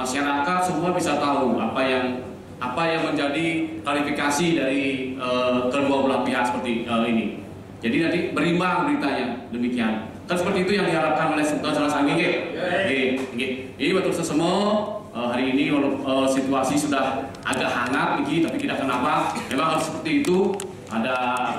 semua bisa tahu apa yang menjadi klarifikasi dari kedua belah pihak seperti ini. Jadi nanti berimbang beritanya demikian. Kan seperti itu yang diharapkan oleh Sultan Salasanggi. Ini betul semua hari ini situasi sudah agak hangat tapi tidak kenapa. Memang harus seperti itu. Ada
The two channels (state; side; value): identical; both; correlation 1.00